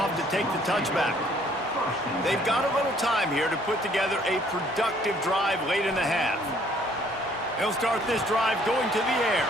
to take the touchback. They've got a little time here to put together a productive drive late in the half. They'll start this drive going to the air.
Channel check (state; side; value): normal; both; correlation 0.61